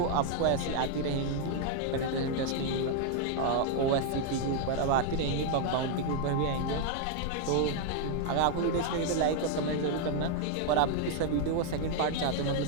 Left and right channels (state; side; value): different; both; correlation 0.00